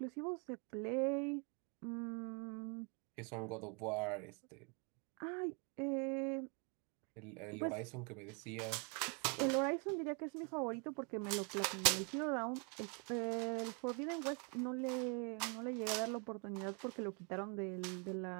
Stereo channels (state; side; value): quieter; left; 34.8 dB